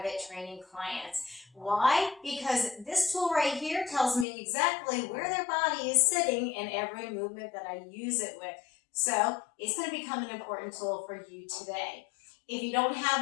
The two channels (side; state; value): right; drops out; at 4.2 s